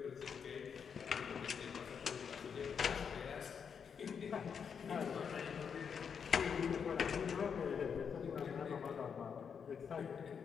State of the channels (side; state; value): right; quieter; 6.8 dB